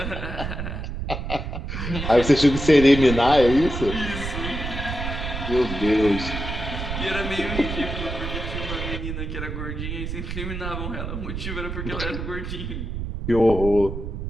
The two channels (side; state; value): right; noise; rumble, 5 dB below the sound